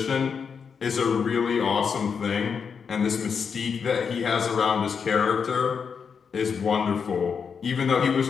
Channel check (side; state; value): right; quieter; 6.3 dB